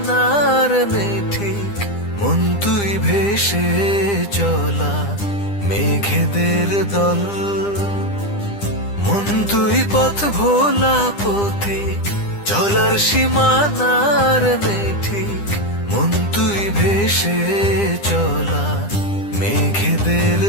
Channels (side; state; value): right; late; 9.9 ms